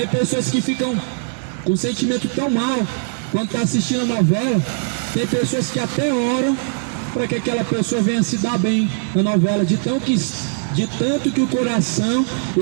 pessoas que ficam com sentimento tão mau quando está assistindo a novela. Tem pessoas que até oram para que aquela pessoa venha se dar bem na novela, de tanto que o coração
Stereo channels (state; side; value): silent; left; 66 dB below the other